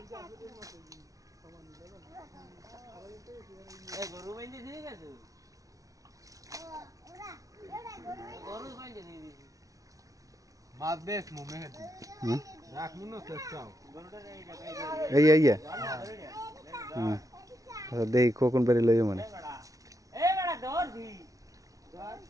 এই গরু বাইন্দে দিয়ে গেছে গরু বাইন্দে দিয়ে দিয়েছে মাছ বেশ মুমে হেদি রাখমু না চেষ্টাও এই এই হুম আচ্ছা দেই কোকন বেরি লইও মানে এ বড়া দৌড় দি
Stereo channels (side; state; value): left; late; 0.17 ms